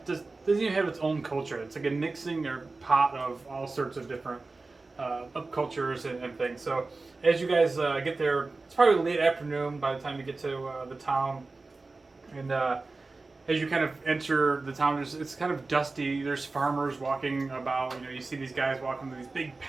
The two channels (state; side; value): quieter; left; 3.6 dB